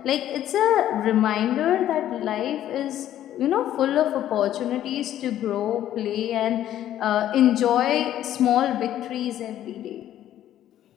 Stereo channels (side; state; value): right; quieter; 12.0 dB